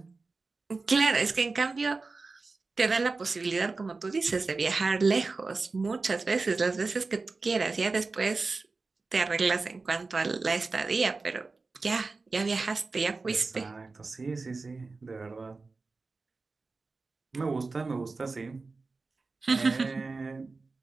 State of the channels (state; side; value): quieter; left; 3.9 dB